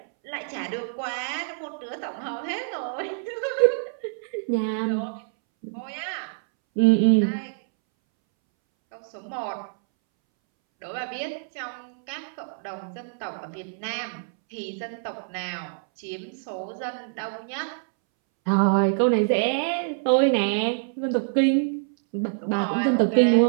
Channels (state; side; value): silent; left; 61 dB below the other